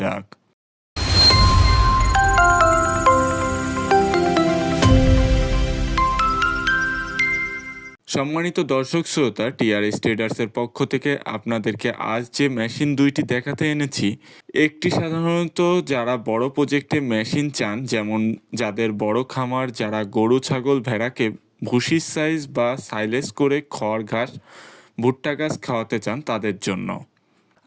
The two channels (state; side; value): identical; both; correlation 1.00